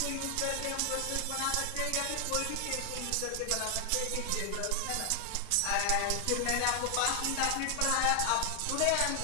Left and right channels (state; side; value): different; both; correlation 0.00